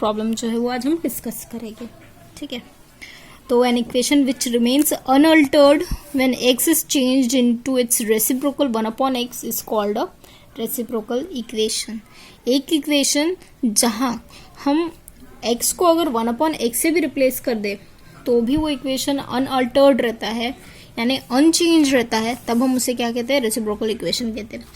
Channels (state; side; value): identical; both; correlation 1.00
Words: जो है वो आज हम डिस्कस करेंगे. ठीक है, तो an equation which remains unaltered when x is changed into its reciprocal 1/x is called a reciprocal equation. एक इक्वेशन जहां हम x को अगर 1/x से भी रिप्लेस कर दे तो भी वो इक्वेशन अनअल्टर्ड रहता है, यानी अनचेंज रहता है, तब हम उसे क्या कहते हैं? रेसिप्रोकल इक्वेशन कहते हैं.